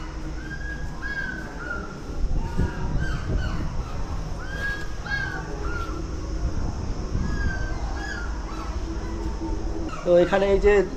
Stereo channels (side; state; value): both; identical; correlation 1.00